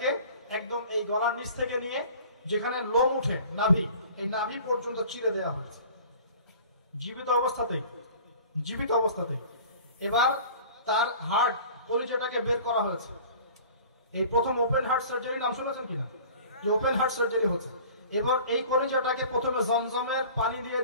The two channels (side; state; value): both; inverted; correlation -0.45